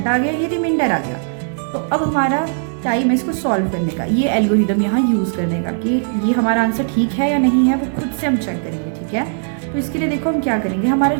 आ गया, ये रिमाइंडर आ गया। तो अब हमारा टाइम है इसको सॉल्व करने का, ये एल्गोरिदम यहाँ यूज़ करने का कि ये हमारा आंसर ठीक है या नहीं है, वो खुद से हम चेक करेंगे, ठीक है। तो इसके लिए देखो हम क्या करेंगे, हमारा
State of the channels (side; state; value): left; silent; digital silence